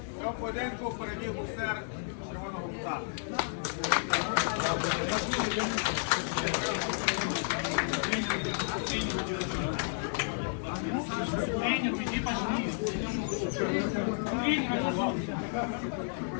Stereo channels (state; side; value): silent; right; digital silence